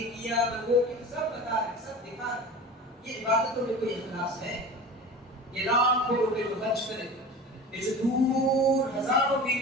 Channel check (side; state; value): both; normal; correlation 0.35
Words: کیا, میں وہ کیا, سب بتا رہے, سب دکھا رہے. یہ عبادتوں میں کوئی اخلاص ہے؟ یہ لاکھوں روپے جو خرچ کرے, یہ جو دور ہزاروں میل